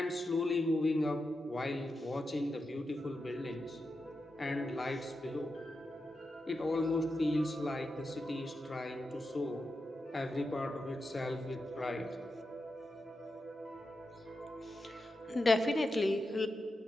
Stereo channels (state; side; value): normal; both; correlation 0.89